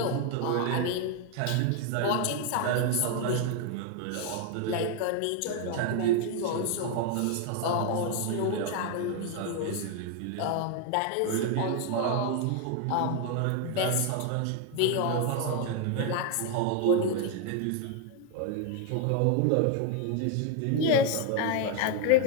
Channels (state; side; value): different; both; correlation 0.01